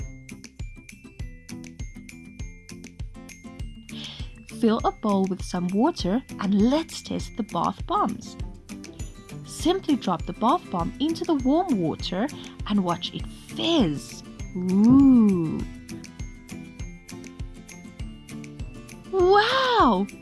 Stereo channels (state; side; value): identical; both; correlation 1.00